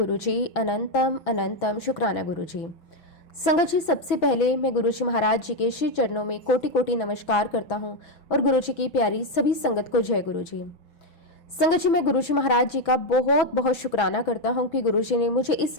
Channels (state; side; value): late; right; 6.1 ms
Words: अनंतम अनंतम शुक्राना गुरुजी। संगत जी, सबसे पहले मैं गुरुजी महाराज जी के श्री चरणों में कोटि कोटि नमस्कार करता हूं और गुरुजी की प्यारी सभी संगत को जय गुरुजी। संगत जी, मैं गुरुजी महाराज जी का बहुत बहुत शुक्राना करता हूं कि गुरुजी ने मुझे इस